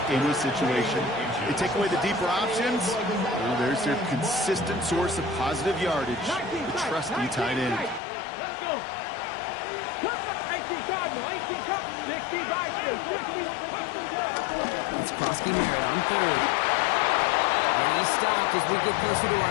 any situation. They take away the deeper options. Well, there's their consistent source of positive yardage, the trusty tight end. Let's go. It's Krosky-Merritt on 3rd. And he's stopped as we get closer to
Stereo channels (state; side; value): drops out; right; at 8.0 s